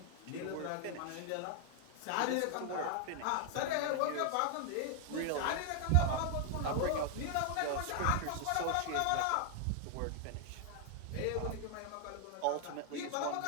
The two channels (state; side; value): different; both; correlation 0.00